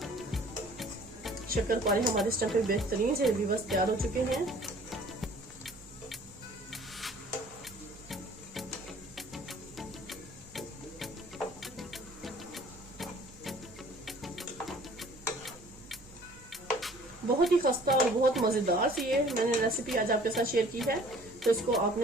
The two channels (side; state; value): right; noise; hum, 23 dB below the sound